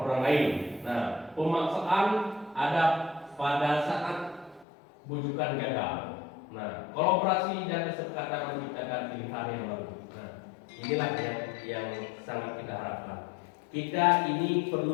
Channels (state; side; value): drops out; right; at 4.7 s